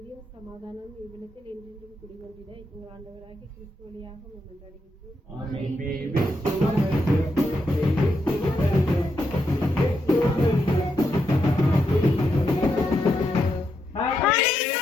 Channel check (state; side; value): normal; both; correlation 0.82